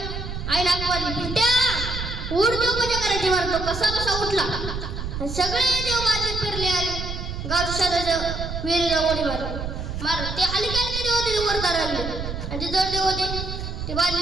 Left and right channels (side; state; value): right; noise; rumble, 6 dB below the sound